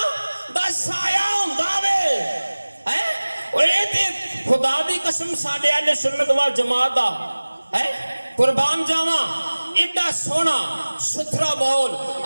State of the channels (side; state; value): both; inverted; correlation -1.00